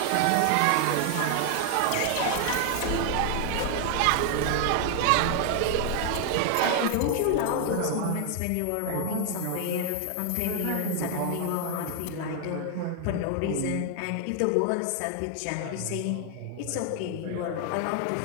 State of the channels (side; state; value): both; different; correlation 0.00